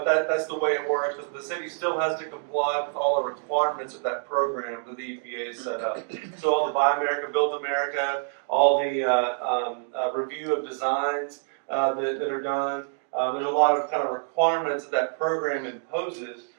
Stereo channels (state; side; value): silent; left; digital silence